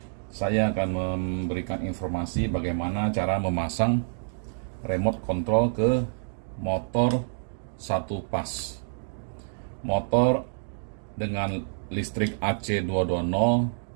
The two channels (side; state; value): left; silent; digital silence